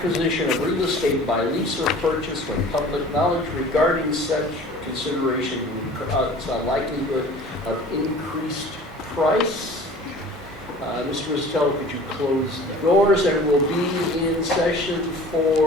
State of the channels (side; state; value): both; normal; correlation 0.45